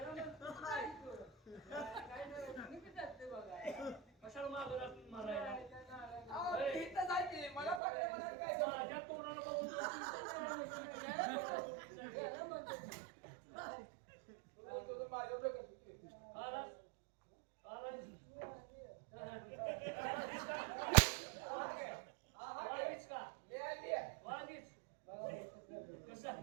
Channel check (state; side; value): drops out; left; at 7.8 s